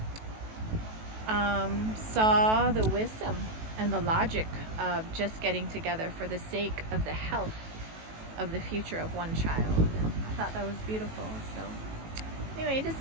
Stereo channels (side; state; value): left; late; 18 ms